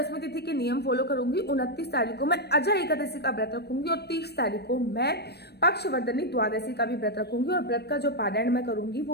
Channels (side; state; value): right; late; 0.47 ms